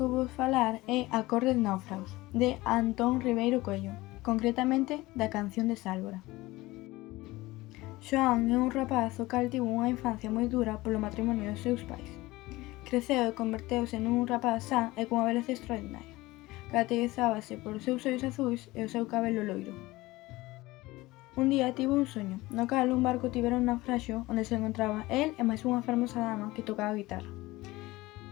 vou falar é A cor dos náufragos, de Antón Ribeiro Coello, concretamente da canción de Sálvora. Xoán é un rapaz o cal tivo unha infancia moi dura polo matrimonio dos seus pais. Creceu e converteuse nun rapaz sán e cunha beleza extraordinaria. Caracterizábase polos seus ollos azuis e o seu cabelo loiro. Un día tivo un soño, no cal un barco tivera un naufraxio onde se encontraba el e máis unha fermosa dama que tocaba a guitarra.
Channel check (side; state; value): right; quieter; 19.6 dB